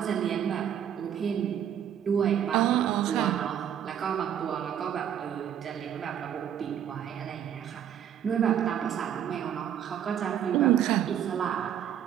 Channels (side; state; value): left; quieter; 9.6 dB